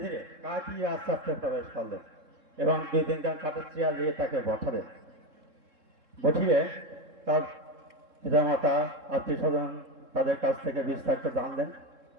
ধীরে কাটিয়ে আস্তে আস্তে প্রবেশ করলেন এবং 2-3 জন কাঠের চেয়ার দিয়ে তাকে বসালেন। বসিয়ে তার পিতামাতা আত্মীয় স্বজন তাদের কাছ থেকে বিস্তারিত জানলেন।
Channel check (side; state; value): left; late; 3.7 ms